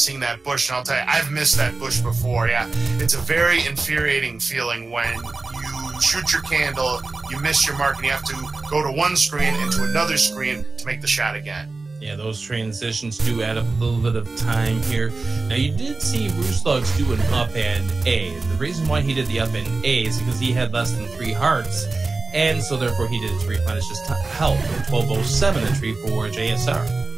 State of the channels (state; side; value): quieter; left; 3.6 dB